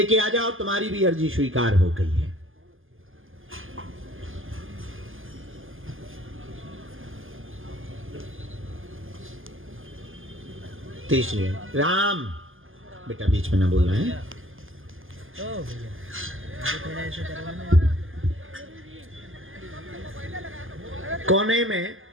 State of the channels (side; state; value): left; late; 0.59 ms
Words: आ जाओ, तुम्हारी भी अर्जी स्वीकार हो गई है। तीसरी राम, बेटा बीच में ना बोलना है। कोने में